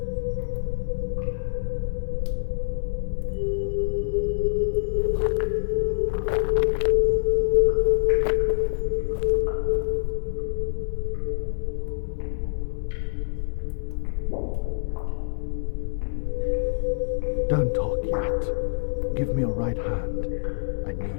Don't talk yet. Give me your right hand. I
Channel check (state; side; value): silent; right; digital silence